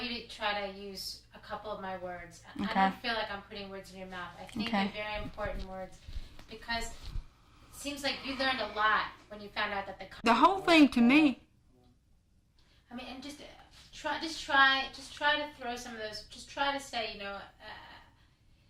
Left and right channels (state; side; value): identical; both; correlation 1.00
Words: you to try to use a couple of my words. Okay. I don't feel like I'm putting words in your mouth. I think they're very important words because it seems like you learned a lot when you found out that the whole thing to me. I mean, and just try to throw some of those. Just try to say,